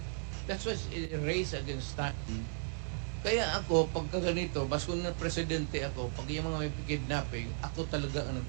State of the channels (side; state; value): left; silent; 54 dB below the other